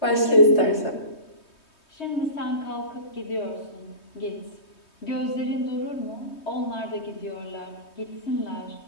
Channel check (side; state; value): right; late; 3.2 ms